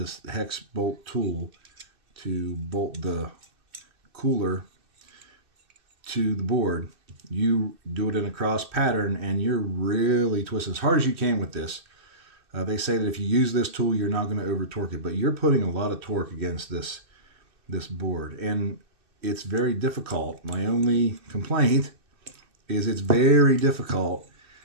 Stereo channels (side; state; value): left; late; 2.6 ms